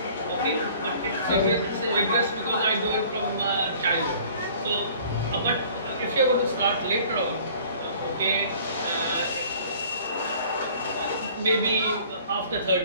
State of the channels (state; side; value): inverted; both; correlation -0.51